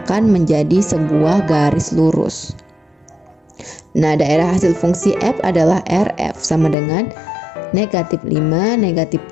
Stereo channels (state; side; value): drops out; right; at 6.8 s